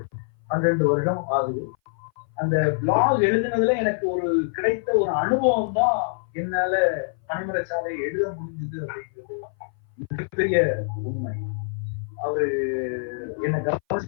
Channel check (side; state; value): right; silent; 58 dB below the other